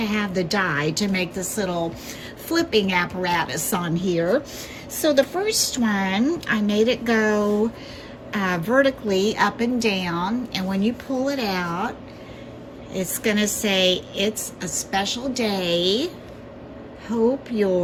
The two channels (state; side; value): identical; both; correlation 1.00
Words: have the die to make this little flipping apparatus on here. So the first one, I made it go vertically up and down, and when you pull it out, it's going to say, "It's a special day. Hope